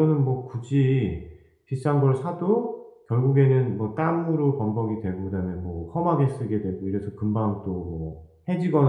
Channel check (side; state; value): both; identical; correlation 1.00